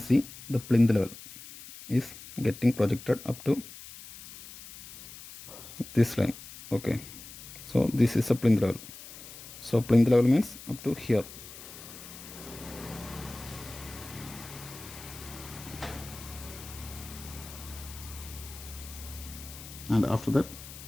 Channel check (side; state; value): left; noise; hiss, 15 dB below the sound